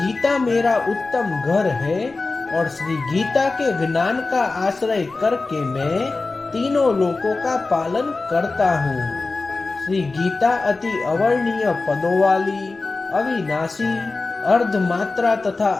मेरा उत्तम घर है और श्री गीता के ज्ञान का आश्रय करके मैं तीनों लोकों का पालन करता हूँ। श्री गीता अति अवर्णीय पदों वाली, अविनाशी, अर्धमात्रा तथा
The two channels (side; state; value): right; quieter; 3.6 dB